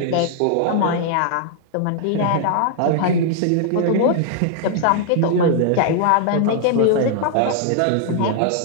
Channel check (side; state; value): both; different; correlation -0.01